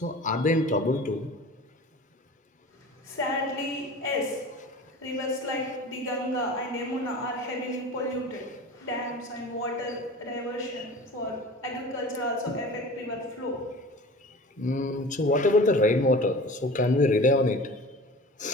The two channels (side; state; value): both; normal; correlation 0.38